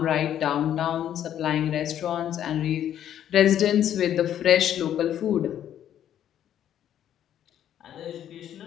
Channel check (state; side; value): quieter; right; 10.6 dB